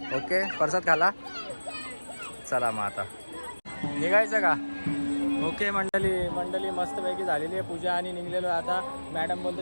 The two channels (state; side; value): inverted; both; correlation -1.00